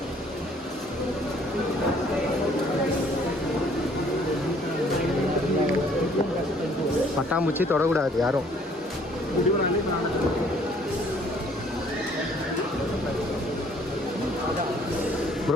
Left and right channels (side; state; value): both; normal; correlation 0.59